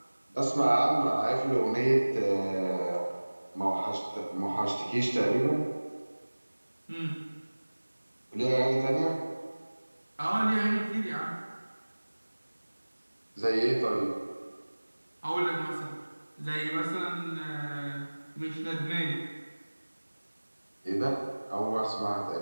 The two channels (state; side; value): inverted; both; correlation -1.00